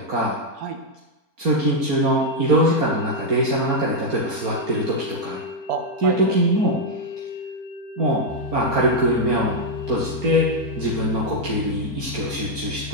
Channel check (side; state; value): left; late; 4.4 ms